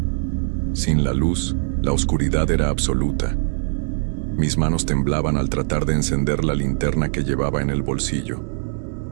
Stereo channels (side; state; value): left; silent; digital silence